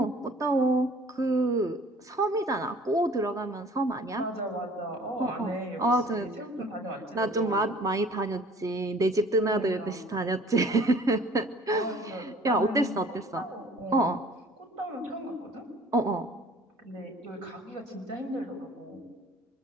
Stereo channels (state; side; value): normal; both; correlation 0.51